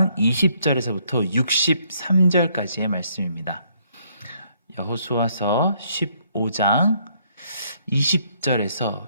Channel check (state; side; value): inverted; both; correlation -0.69